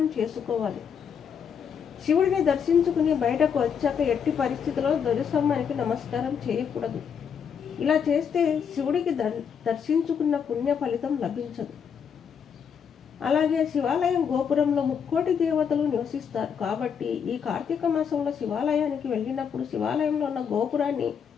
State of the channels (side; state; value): right; quieter; 7.2 dB